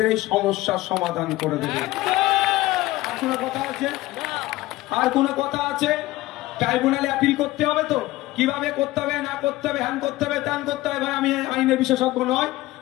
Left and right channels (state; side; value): quieter; right; 18.0 dB